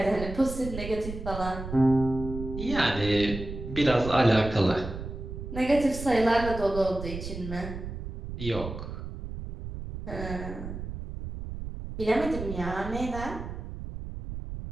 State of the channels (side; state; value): right; noise; rumble, 8 dB below the sound